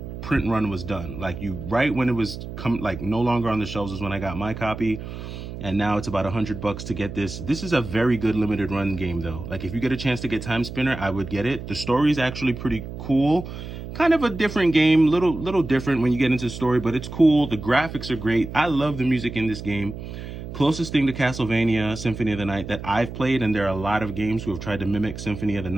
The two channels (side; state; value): right; noise; hum, 10 dB below the sound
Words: print run was done. Like right when it was no longer on the shelves is when I got my copy. And now it's about $100 to get this. This is a very good Limited Run game though. Like if you get a chance to get Timespinner, I would get it. The story is actually pretty cool. Kind of a different game, little different when you get into the story, but it's cool. The graphics are great. I love the music in this game. Closest thing to Castlevania Symphony of the Night that I've played, and there are a lot of games who have tried to mimic Symphony of the